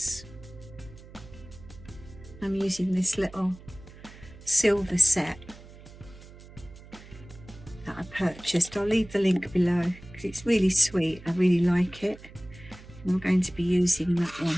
I'm using this little silver set that I purchased. I'll leave the link below because it's really sweet. I really like it. And I'm going to be using that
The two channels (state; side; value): noise; right; hum, 19 dB below the sound